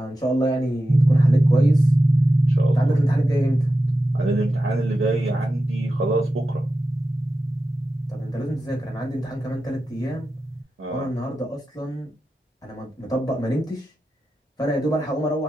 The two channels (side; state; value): both; normal; correlation 0.91